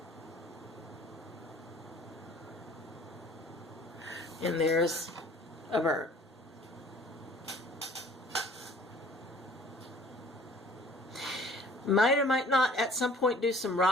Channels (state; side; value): normal; both; correlation 0.52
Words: And there's a bird. Might or might not at some point do some